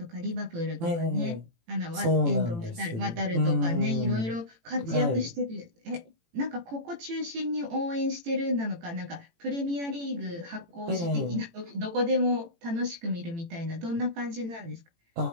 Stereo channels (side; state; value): left; late; 18 ms